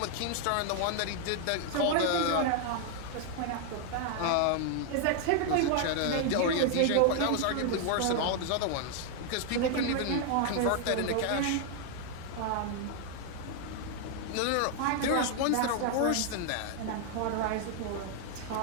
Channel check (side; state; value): both; different; correlation 0.00